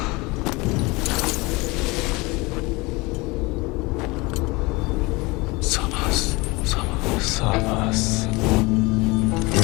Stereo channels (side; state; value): right; quieter; 24.3 dB